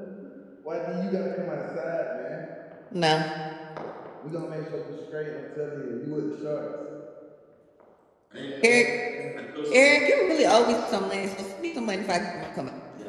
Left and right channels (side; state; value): both; identical; correlation 1.00